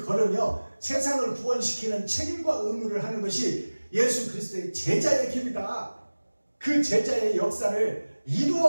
걸으며 세상을 구원시키는 책임과 의무를 하는 것이 예수 그리스도의 제자의 길이다. 그 제자의 역사를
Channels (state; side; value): inverted; both; correlation -1.00